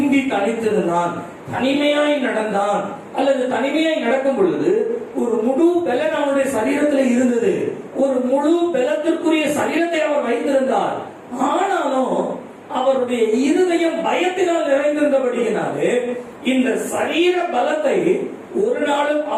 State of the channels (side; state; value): both; identical; correlation 1.00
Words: தனித்திருந்தான், தனிமையாய் நடந்தான். அல்லது தனிமையாய் நடக்கும் பொழுது ஒரு முழு பலன் அவனுடைய சரீரத்தில் இருந்தது. ஒரு முழு பலத்திற்குரிய சரீரத்தை அவர் வைத்திருந்தார். ஆனாலும் அவருடைய இருதயம் பயத்தினால் நிறைந்திருந்தபடியினாலே இந்த சரீர பலத்தை ஒரு நாளும்